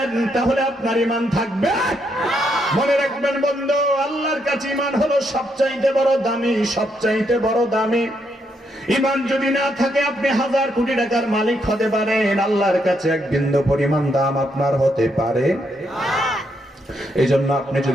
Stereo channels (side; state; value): both; normal; correlation 0.77